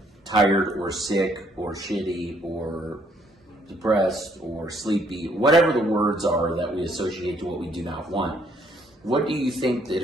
tired or sick or shitty or depressed or sleepy, whatever the words are that we associate to what we do not want. What do you think that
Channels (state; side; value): normal; both; correlation 0.67